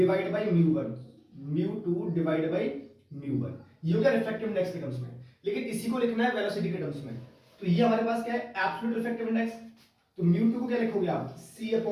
बाय μ1, μ2 डिवाइड बाय μ1। ये हो गया रिफ्रैक्टिव इंडेक्स के टर्म्स में। लेकिन इसी को लिखना है वेलोसिटी के टर्म्स में। तो ये हमारे पास क्या है? Absolute refractive index. तो μ2 को क्या लिखोगे आप? c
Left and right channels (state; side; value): identical; both; correlation 1.00